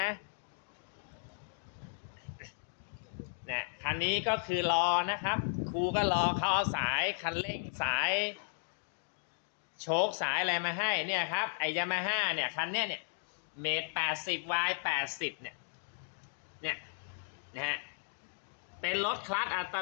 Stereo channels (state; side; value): silent; right; digital silence